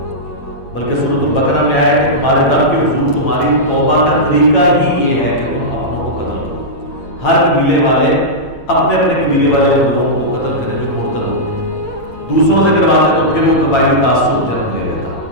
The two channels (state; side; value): late; right; 8.8 ms